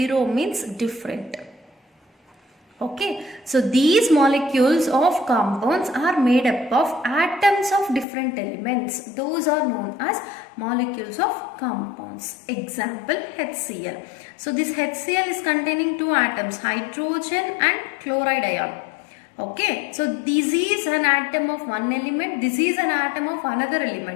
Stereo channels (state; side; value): drops out; right; at 8.1 s